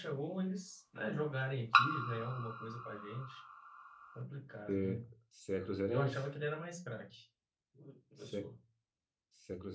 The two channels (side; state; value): both; identical; correlation 1.00